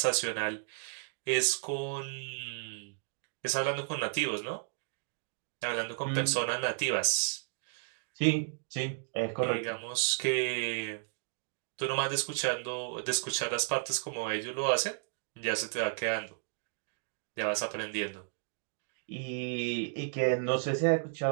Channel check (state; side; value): silent; left; digital silence